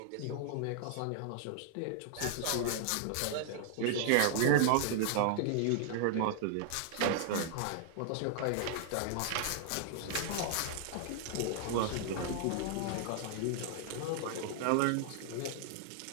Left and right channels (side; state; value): both; different; correlation -0.01